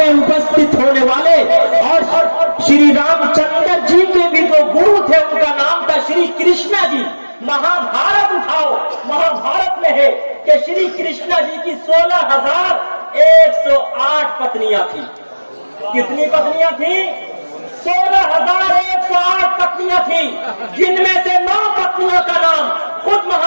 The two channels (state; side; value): inverted; both; correlation -1.00